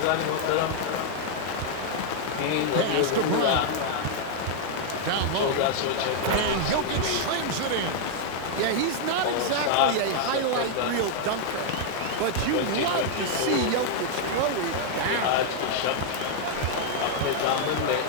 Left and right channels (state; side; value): different; both; correlation -0.01